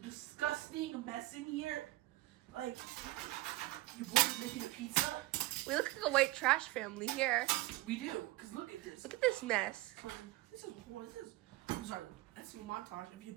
disgusting mess in here. Like, you boys making a pizza? We look like a white trash family here. We do, because look at this. Look at this mess. I'm sorry, that's a montage of your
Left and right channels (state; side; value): quieter; left; 18.5 dB